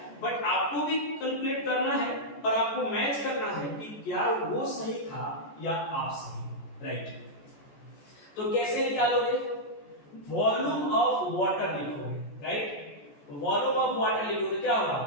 बट आपको भी कैलकुलेट करना है और आपको मैच करना है कि क्या वो सही था या आप सही, राइट। तो कैसे निकालोगे, वॉल्यूम ऑफ वाटर लिखोगे, राइट। वॉल्यूम ऑफ वाटर लिखोगे, क्या होगा,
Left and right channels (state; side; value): late; right; 14 ms